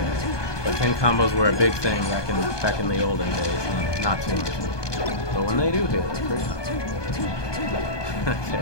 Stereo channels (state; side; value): late; right; 1.2 ms